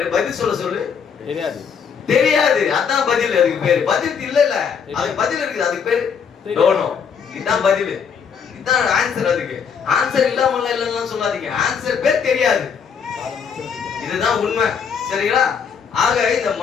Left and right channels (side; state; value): right; quieter; 6.7 dB